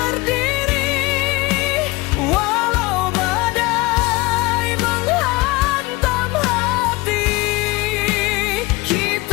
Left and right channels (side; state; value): right; quieter; 22.1 dB